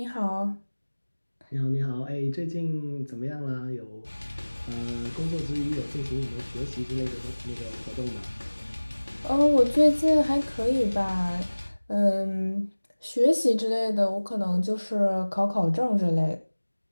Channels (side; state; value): both; inverted; correlation -1.00